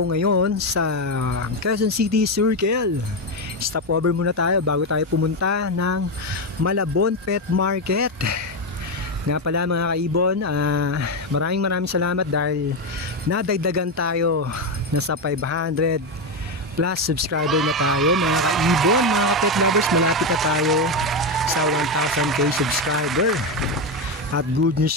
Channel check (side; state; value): both; normal; correlation 0.10